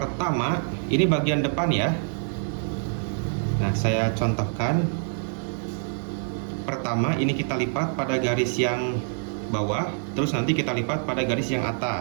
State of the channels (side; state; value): left; silent; digital silence